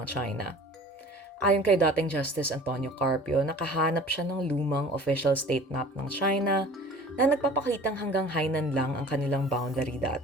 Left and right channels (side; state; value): both; normal; correlation 0.45